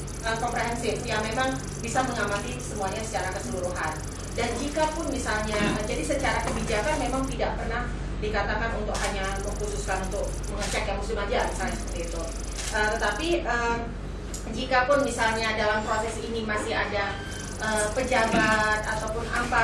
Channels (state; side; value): identical; both; correlation 1.00